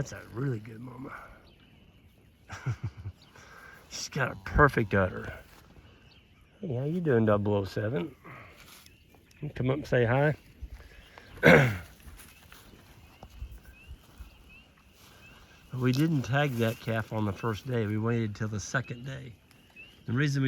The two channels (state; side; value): identical; both; correlation 1.00